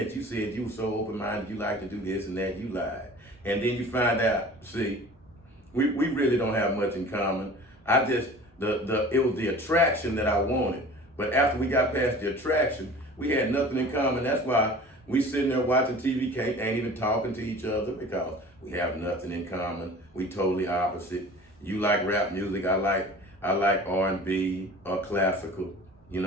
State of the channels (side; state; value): both; normal; correlation 0.42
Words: you said you were so open-minded, you like to do this and that, you lied. And then you find out, see, we really don't have much in common. It was the attraction that I wanted. But after we got past the attraction, we had nothing in common. That's why we sitting there watching TV, ain't even talking to each other because we have nothing in common. We totally opposite. You like rap music, I like R&B or classical. You